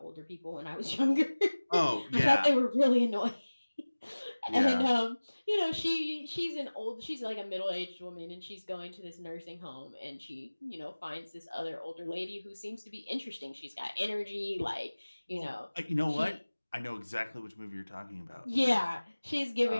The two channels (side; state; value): both; inverted; correlation -1.00